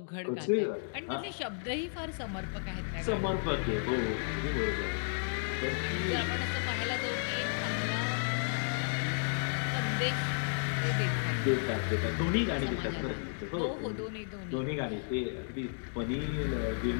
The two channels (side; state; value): right; silent; digital silence